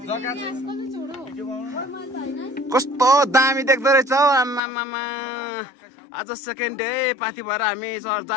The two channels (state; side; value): drops out; right; at 4.6 s